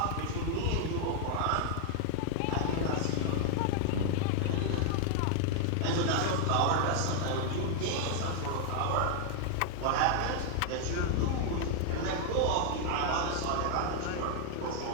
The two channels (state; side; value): different; both; correlation 0.00